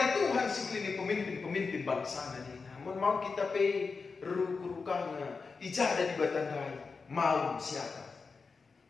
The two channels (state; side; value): quieter; right; 4.7 dB